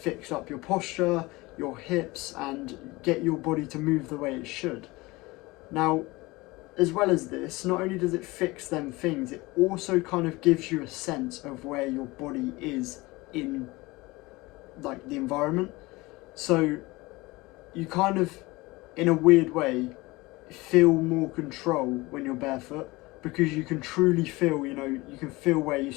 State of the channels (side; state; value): right; quieter; 21.9 dB